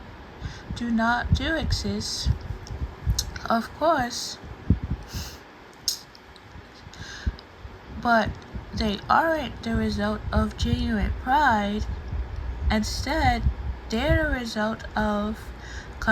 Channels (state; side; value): identical; both; correlation 1.00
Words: do exist, of course, but they aren't the result of genuine pride. Instead, they're the result of